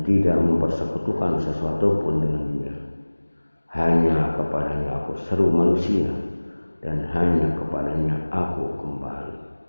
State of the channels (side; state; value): both; inverted; correlation -1.00